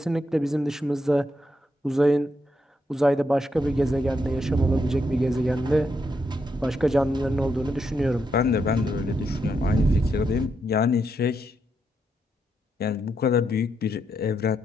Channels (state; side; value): normal; both; correlation 0.80